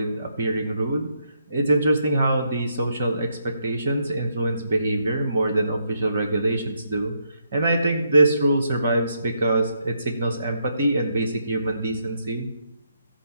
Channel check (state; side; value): inverted; both; correlation -0.77